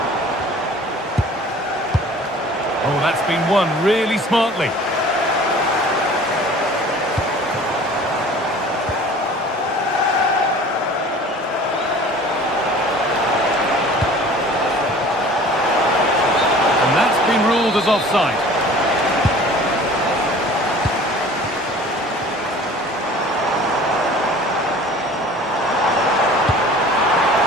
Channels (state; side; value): normal; both; correlation 0.46